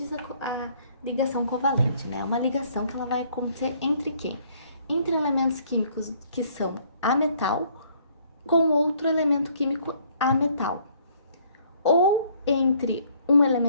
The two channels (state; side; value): inverted; both; correlation -0.62